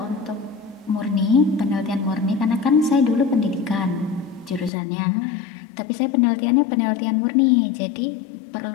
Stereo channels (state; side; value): drops out; right; at 4.7 s